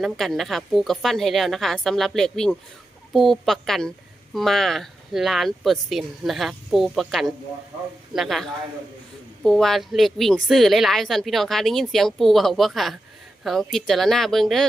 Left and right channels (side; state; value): both; normal; correlation 0.89